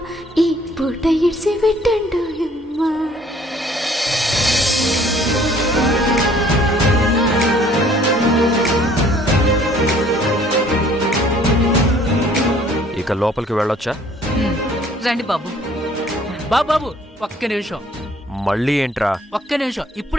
ఈ పూట ఇడిసి పెట్టండోయమ్మ. ఇక లోపలికి వెళ్ళొచ్చా? రండి బాబు. బాబు ఒక్క నిమిషం, మళ్ళీ ఏంట్రా? ఒక్క నిమిషం,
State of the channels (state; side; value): normal; both; correlation 0.58